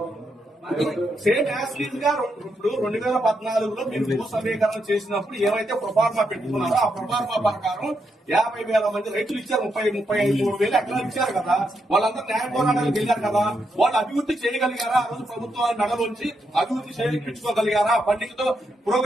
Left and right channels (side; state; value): both; normal; correlation 0.81